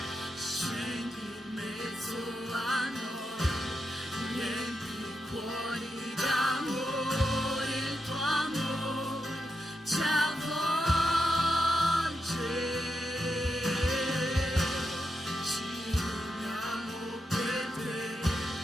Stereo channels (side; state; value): both; normal; correlation 0.85